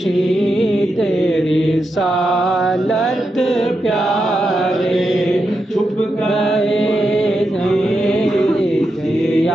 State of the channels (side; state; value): both; normal; correlation 0.86